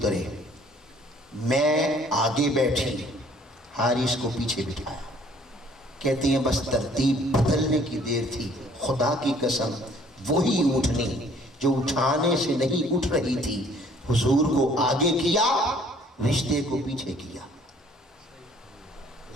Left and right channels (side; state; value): both; normal; correlation 0.58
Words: میں آگے بیٹھی، حارث کو پیچھے بٹھایا۔ کہتے ہیں بس ترتیب بدلنے کی دیر تھی، خدا کی قسم وہی اٹھنی جو اٹھانے سے نہیں اٹھ رہی تھی، حضور کو آگے کیا، رشتے کو پیچھے کیا،